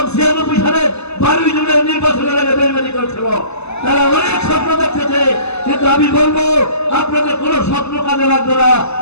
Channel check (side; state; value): right; late; 0.80 ms